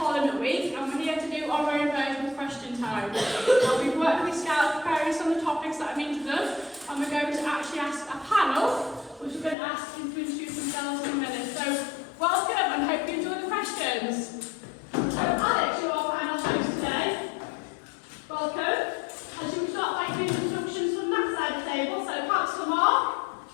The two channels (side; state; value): right; drops out; at 9.6 s